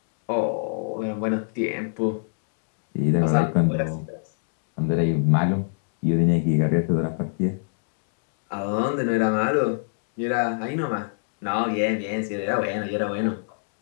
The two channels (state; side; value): silent; right; digital silence